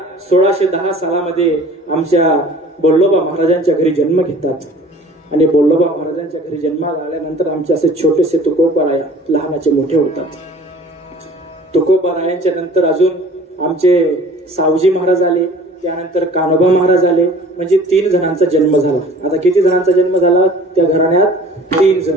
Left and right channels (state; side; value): normal; both; correlation 0.47